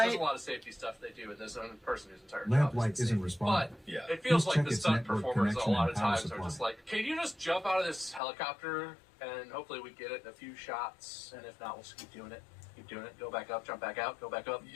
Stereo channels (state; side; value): drops out; right; at 8.2 s